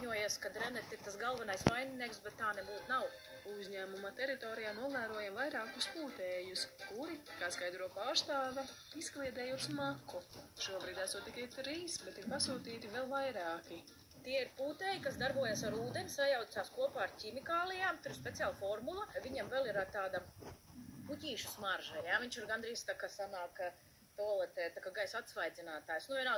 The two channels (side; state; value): both; identical; correlation 1.00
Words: ka Rennet ir tas galvenais vaininieks, bet tā nebūtu nav. Uzņēmuma teritorijā novērojam vairākus pūtējus, kuri, kā skaidro pārstāve, izkliedējot smaku. Šobrīd esot tikai 3, bet ir pasūtīti vēl vairāki. Tie ir pūtēji, kas darbojas ar ūdeni, sajaucās kopā ar ķimikālijām, tur ir speciāla formula. Viņam vēl ir tāda puķīšu smarža, jā? Viņš ir gandrīz tā, ka sanāk toaletē, tā kā gaisa atsvaidzinātājs. Nu,